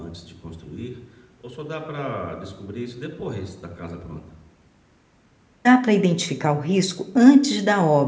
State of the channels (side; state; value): both; identical; correlation 1.00